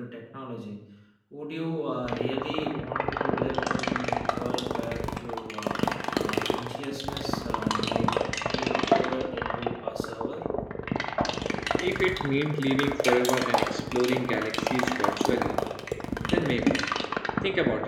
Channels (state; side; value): identical; both; correlation 1.00